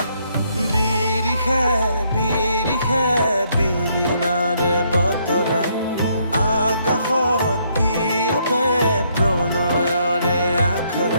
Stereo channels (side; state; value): both; inverted; correlation -0.71